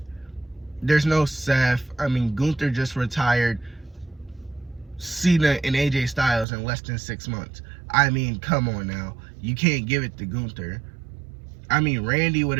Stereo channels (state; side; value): drops out; left; at 6.5 s